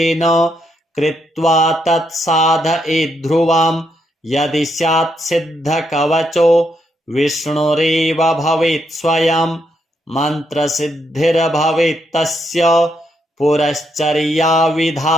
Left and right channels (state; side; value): normal; both; correlation 0.78